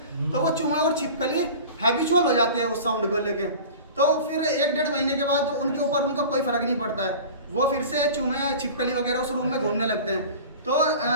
तो वो चूहे और छिपकली हैबिचुअल हो जाते हैं उस साउंड को लेके। तो फिर 1-1.5 महीने के बाद उनके ऊपर उनका कोई फर्क नहीं पड़ता है, वो फिर से चूहे छिपकली वगैरह उस रूम में घूमने लगते हैं। तो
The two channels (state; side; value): inverted; both; correlation -0.37